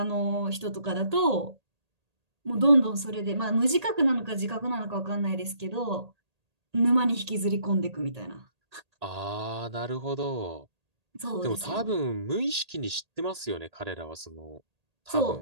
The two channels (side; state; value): left; late; 1.8 ms